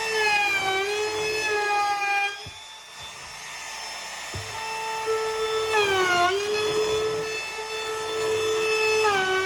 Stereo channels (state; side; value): identical; both; correlation 1.00